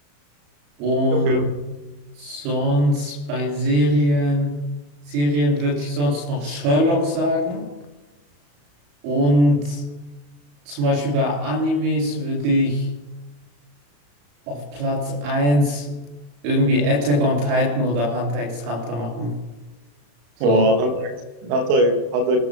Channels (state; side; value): late; left; 35 ms